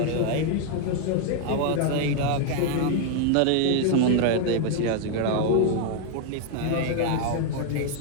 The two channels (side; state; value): both; different; correlation 0.00